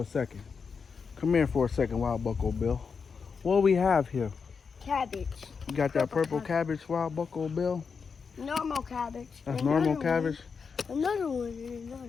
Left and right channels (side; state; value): right; quieter; 5.6 dB